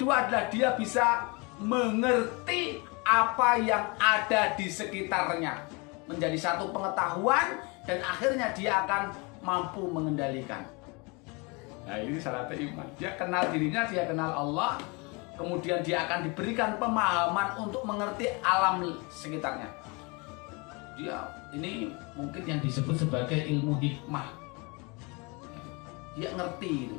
adalah dia bisa mengerti apa yang ada di sekitarnya, menjadi satu pengetahuan, dan akhirnya dia akan mampu mengendalikan. Nah, ini syaratnya iman. Dia kenal dirinya, dia kenal Allah, kemudian dia akan diberikan pemahaman untuk mengerti alam sekitarnya. Ini mungkin yang disebut sebagai ilmu hikmah. Dia ngerti,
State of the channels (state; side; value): quieter; right; 29.0 dB